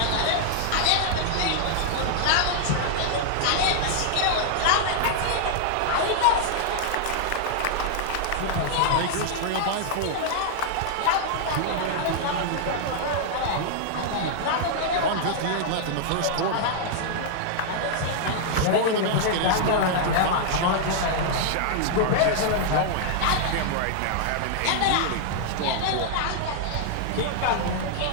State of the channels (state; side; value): different; both; correlation -0.01